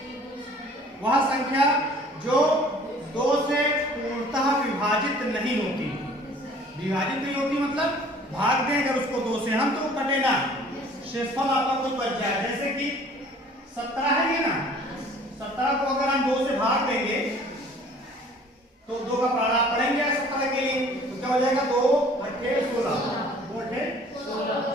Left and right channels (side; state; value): both; normal; correlation 0.52